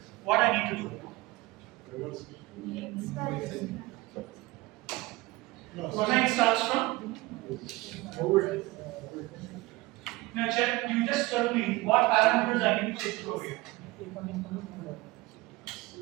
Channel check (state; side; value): quieter; left; 20.6 dB